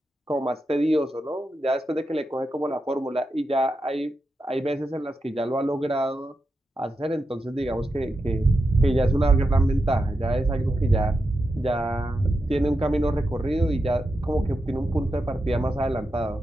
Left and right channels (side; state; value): both; normal; correlation 0.88